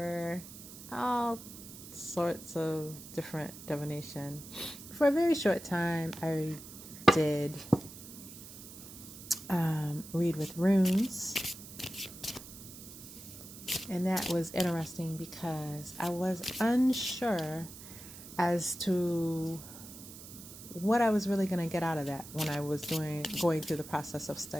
All sorts of different divination. For a very short time, I did read with runes. And that was interesting because I was unsure as to what I was really going to get out of that when I was going through the process of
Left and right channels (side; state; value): right; noise; hiss, 15 dB below the sound